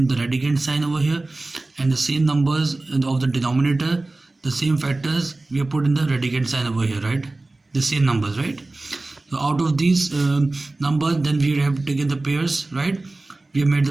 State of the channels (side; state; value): left; quieter; 3.0 dB